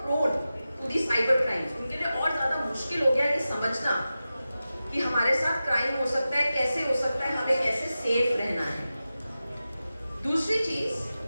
to the cyber crimes. उनके लिए और ज्यादा मुश्किल हो गया ये समझना कि हमारे साथ क्राइम हो सकता है, कैसे हो सकता है, हमें कैसे सेफ रहना है। दूसरी चीज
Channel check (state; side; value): inverted; both; correlation -0.94